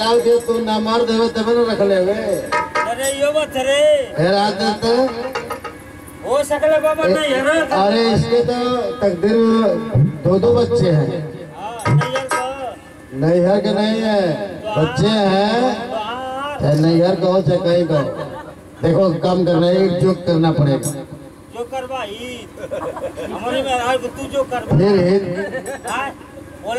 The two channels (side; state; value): both; identical; correlation 1.00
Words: दे तू ना मर्द हो तब न रख ले। अरे यो बात रे फिर आते तो हो सकले बाबा नहीं है। अरे इसके तो तकदीर दो बच्चे हैं। नैहर के नहीं है बच्चे हैं। नैहर कहो चाहे कहीं कहो देखो काम करना है जो करना पड़ेगा जो करवाई हमारे में आज तू जो कर फिर